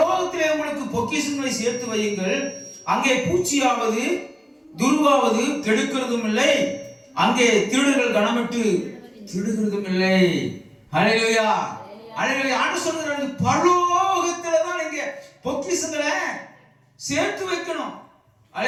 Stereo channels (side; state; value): both; identical; correlation 1.00